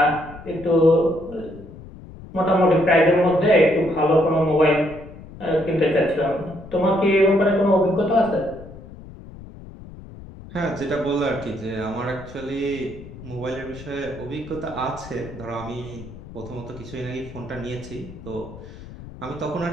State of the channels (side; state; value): left; noise; rumble, 16 dB below the sound